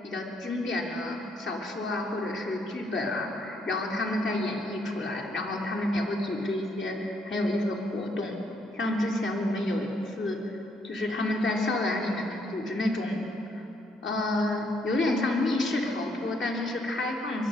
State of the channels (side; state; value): both; normal; correlation 0.71